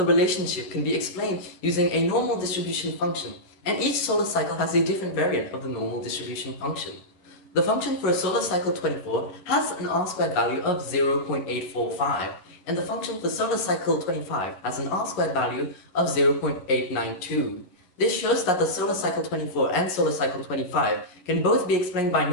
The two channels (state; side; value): late; right; 11 ms